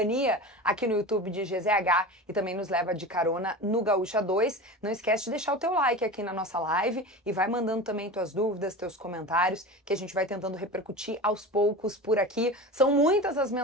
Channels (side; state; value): both; normal; correlation 0.31